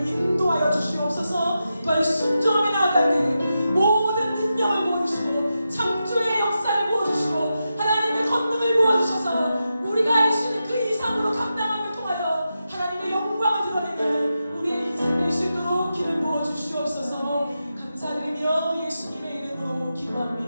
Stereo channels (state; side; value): inverted; both; correlation -0.89